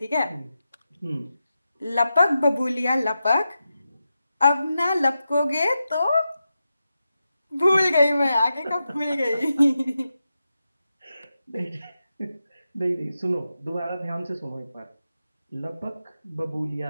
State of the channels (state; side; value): inverted; both; correlation -0.90